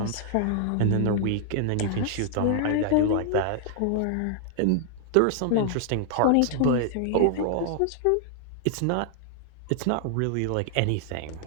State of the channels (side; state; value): both; different; correlation -0.01